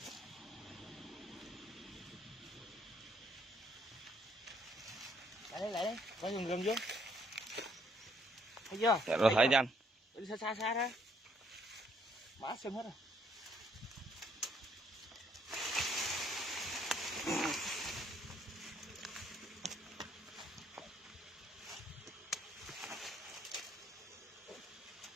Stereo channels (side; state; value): both; normal; correlation 0.68